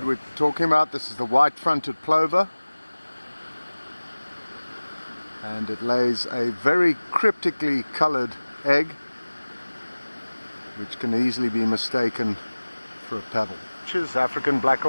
we're talking about. This is the white-fronted plover, and it lays a very cryptically coloured egg, which can easily be mistaken for a pebble. African black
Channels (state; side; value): inverted; both; correlation -1.00